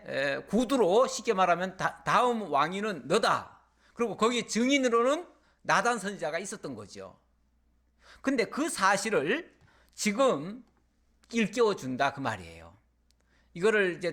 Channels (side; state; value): both; identical; correlation 1.00